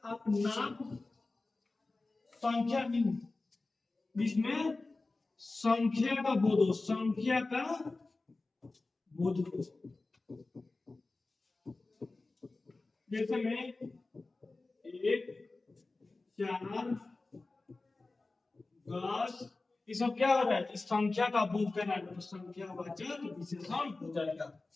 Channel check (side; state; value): right; quieter; 3.4 dB